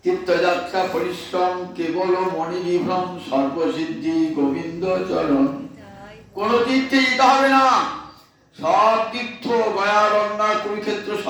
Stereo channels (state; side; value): identical; both; correlation 1.00